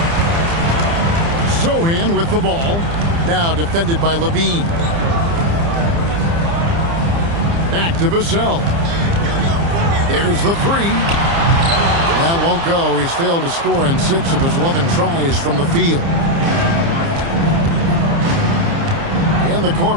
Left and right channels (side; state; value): left; late; 30 ms